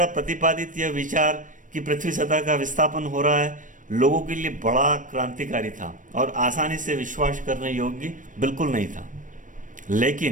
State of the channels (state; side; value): late; left; 0.38 ms